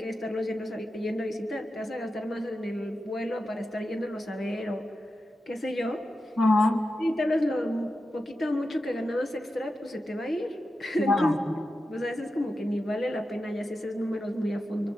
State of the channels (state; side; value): normal; both; correlation 0.90